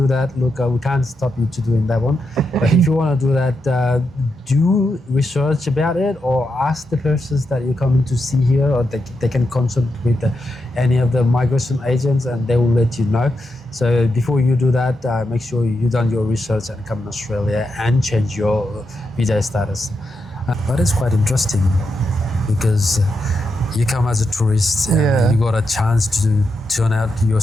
that, look, we can't stop you to doing that one. But if you want to do that, do research about it, or ask the persons that you're coming to see here, or they can consult with any of the migration agents, and they will let you know. So before you do that, make sure you done your research and come to Australia and change your visa status. But it's quite interesting because you come as a tourist and Yeah. you got a chance to turn out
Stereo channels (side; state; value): both; normal; correlation 0.85